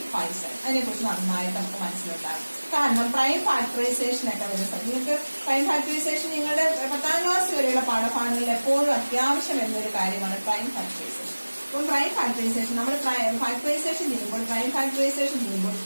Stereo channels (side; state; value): both; inverted; correlation -1.00